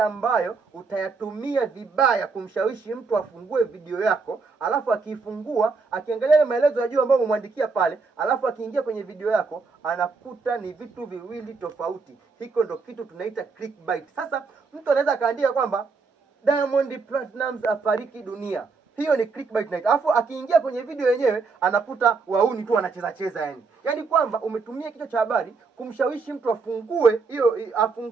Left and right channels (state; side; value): quieter; left; 4.5 dB